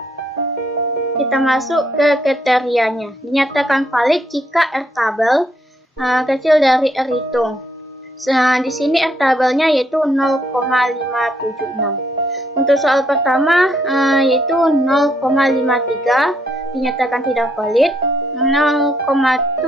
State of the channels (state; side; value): normal; both; correlation 0.72